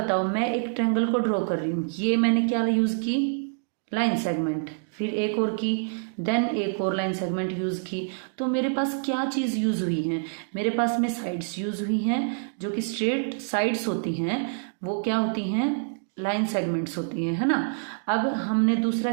मैं एक ट्रायंगल को ड्रॉ कर रही हूँ, ये मैंने क्या यूज़ की? Line segment. फिर एक और की, देन एक और लाइन सेगमेंट यूज़ की। तो मेरे पास क्या चीज़ यूज़ हुई है? मेरे पास में साइड्स यूज़ हुई हैं, जो कि स्ट्रेट साइड्स होती हैं, वो क्या होती हैं? लाइन सेगमेंट्स होती हैं, है ना। अब हमने दूसरा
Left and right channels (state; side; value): silent; left; digital silence